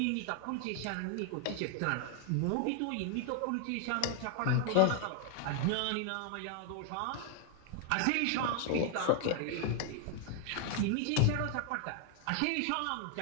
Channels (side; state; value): both; different; correlation 0.00